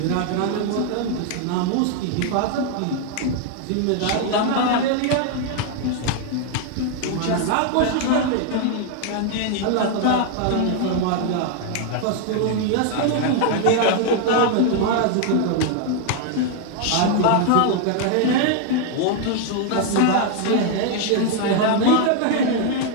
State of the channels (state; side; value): different; both; correlation 0.00